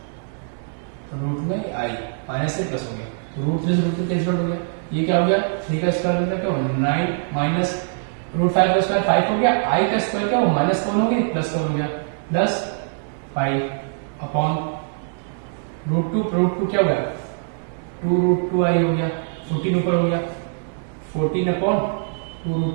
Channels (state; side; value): silent; left; digital silence